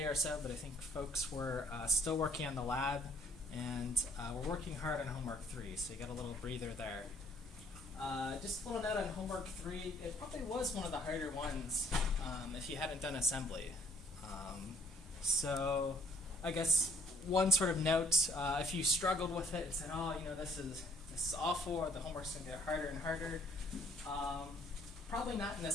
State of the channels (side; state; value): both; normal; correlation 0.61